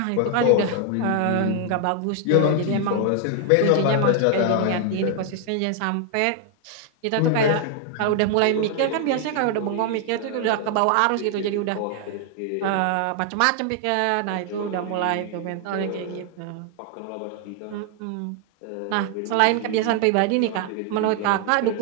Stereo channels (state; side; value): different; both; correlation 0.00